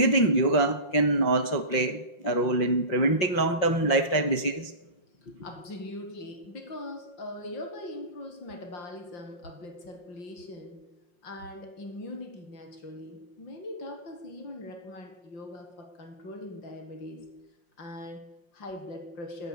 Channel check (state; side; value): late; right; 5.6 ms